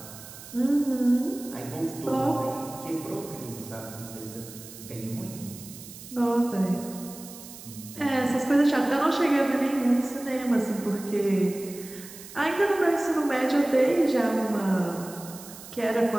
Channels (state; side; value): noise; right; hiss, 16 dB below the sound